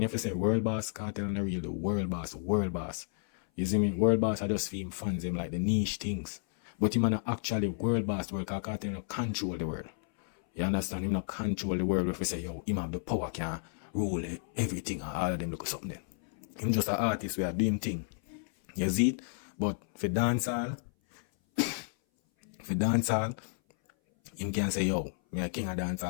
you have to say world boss, Cartel and the real the world boss. You see me? World boss, I just feel him fans him like the niche things. But him not actually world boss world, because Cartel not control the world. You understand? Him not control the world if you say, yo, him have the power, can rule everything and all of them look at something then. Him just an artist where do him thing. You see it? But for dancehall, him can say, yo, me a king of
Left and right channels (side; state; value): right; silent; 57 dB below the other